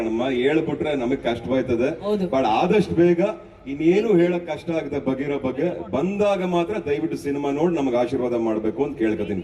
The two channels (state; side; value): identical; both; correlation 1.00